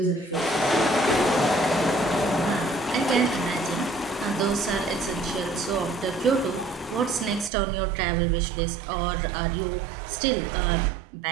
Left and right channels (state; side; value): drops out; left; at 7.5 s